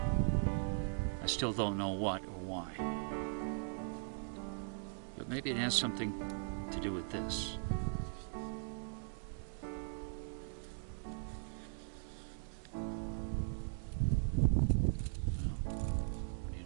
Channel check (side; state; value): left; silent; digital silence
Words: I still don't know what or why, but maybe it has something to do with this. What do you